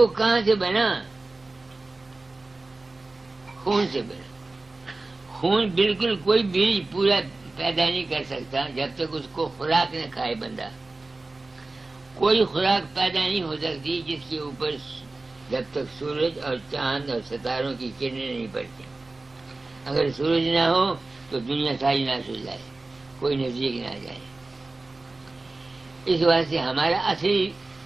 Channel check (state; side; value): quieter; left; 3.2 dB